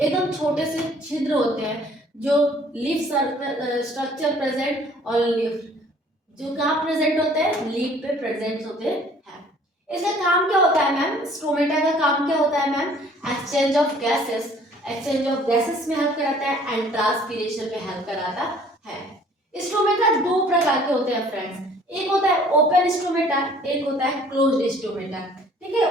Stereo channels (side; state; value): both; normal; correlation 0.55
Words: छोटे से छिद्र होते हैं जो लीफ स्ट्रक्चर प्रेजेंट और लीफ जो कहाँ प्रेजेंट होते हैं, लीफ पे प्रेजेंट होते हैं। इसका काम क्या होता है मैम, स्टोमेटा का काम क्या होता है ma'am, exchange of gases, exchange of gases में हेल्प कराता है एंड ट्रांसपीरेशन में हेल्प कराता है। स्टोमेटा दो प्रकार के होते हैं फ्रेंड्स, एक होता है ओपन स्टोमेटा, एक होता है क्लोज्ड स्टोमेटा। ठीक